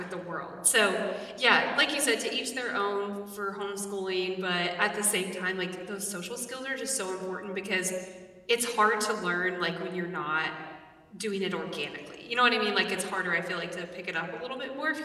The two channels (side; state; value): both; identical; correlation 1.00